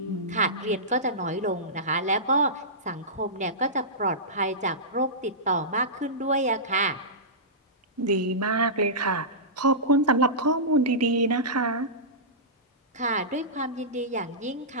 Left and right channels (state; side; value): normal; both; correlation -0.18